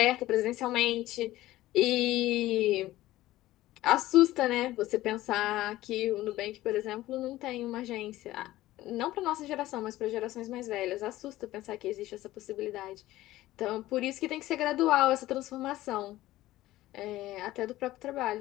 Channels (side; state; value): right; quieter; 16.1 dB